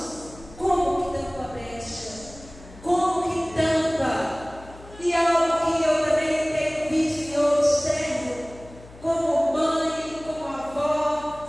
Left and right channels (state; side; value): noise; left; hum, 20 dB below the sound